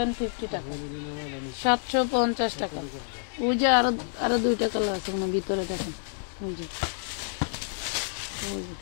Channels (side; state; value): right; silent; digital silence